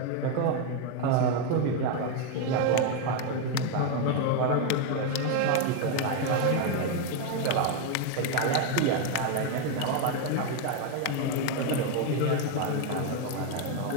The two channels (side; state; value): both; different; correlation 0.01